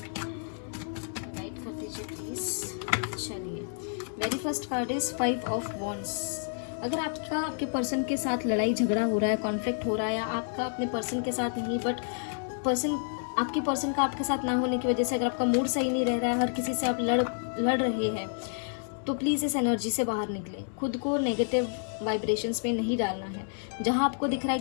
guide कर दीजिए प्लीज। चलिए, very first card is 5 of wands. अगर आपके पर्सन के साथ लड़ाई झगड़ा हो रहा है, कॉन्फ्लिक्ट हो रहा है, या आपका अपने पर्सन के साथ नहीं बट आपके पर्सन का आपके साथ ना होने की वजह से अगर आपका मूड सही नहीं रह रहा है, हर किसी से आप लड़ रहे हैं, तो प्लीज़ इस एनर्जी से बाहर निकलें। खुद को नेगेटिव वाइब्रेशंस में नहीं डालना है। जहां आपको दिख रहा है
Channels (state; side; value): silent; right; digital silence